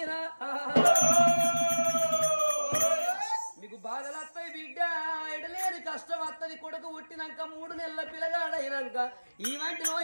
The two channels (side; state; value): both; inverted; correlation -1.00